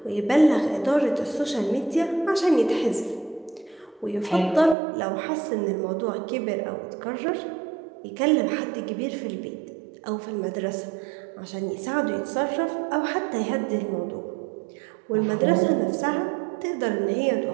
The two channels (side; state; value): left; drops out; at 4.8 s